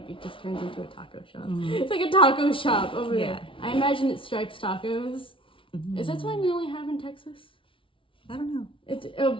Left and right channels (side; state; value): right; late; 0.25 ms